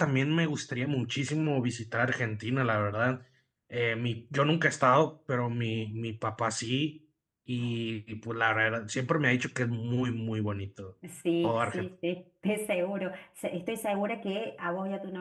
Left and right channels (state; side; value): identical; both; correlation 1.00